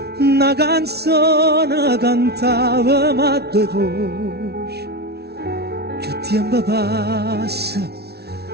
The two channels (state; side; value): late; left; 0.47 ms